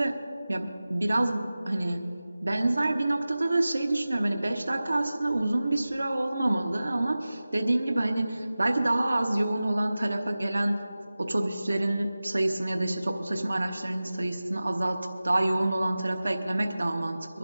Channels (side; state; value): both; inverted; correlation -0.97